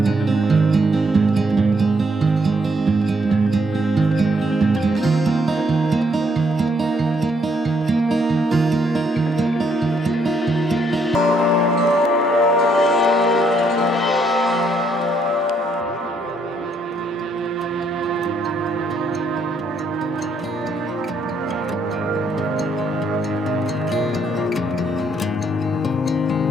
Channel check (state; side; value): normal; both; correlation 0.72